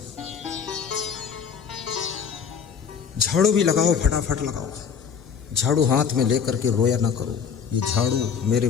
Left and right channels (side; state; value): right; quieter; 6.8 dB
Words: झाड़ू भी लगाओ, फटाफट लगाओ। झाड़ू हाथ में लेकर के रोया ना करो, ये झाड़ू मेरे